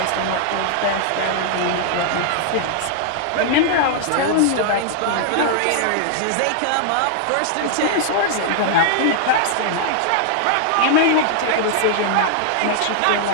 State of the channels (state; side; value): different; both; correlation -0.01